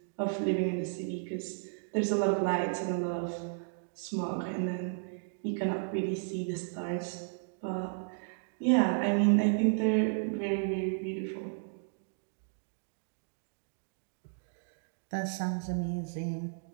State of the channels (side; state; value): left; silent; digital silence